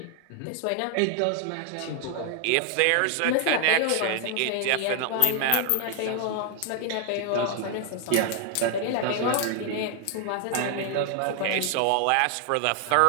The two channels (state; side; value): different; both; correlation 0.00